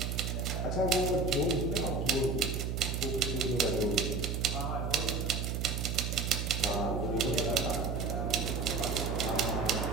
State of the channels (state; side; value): noise; right; hum, 1 dB below the sound